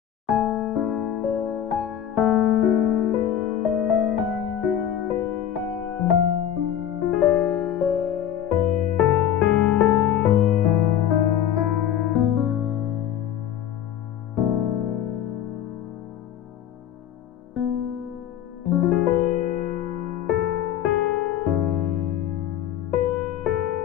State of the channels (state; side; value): quieter; right; 10.3 dB